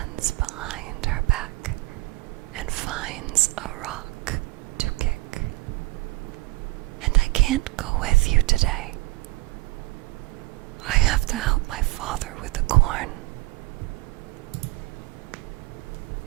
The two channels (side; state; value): left; quieter; 21.5 dB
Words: behind her back and finds a rock to kick. And I can't go with you today. I have to help my father with the corn.